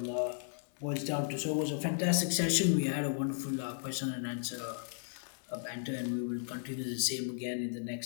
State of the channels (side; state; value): right; silent; digital silence